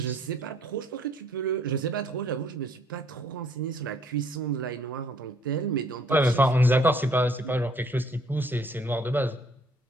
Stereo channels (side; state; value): both; normal; correlation 0.62